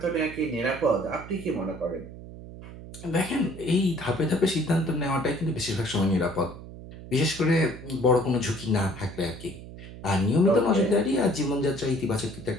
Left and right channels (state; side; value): noise; right; hum, 14 dB below the sound